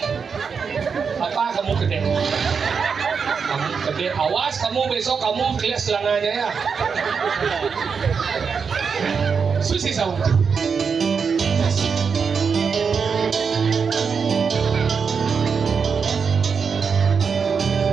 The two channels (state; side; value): quieter; left; 5.9 dB